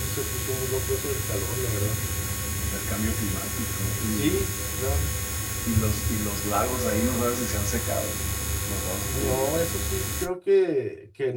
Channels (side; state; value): both; identical; correlation 1.00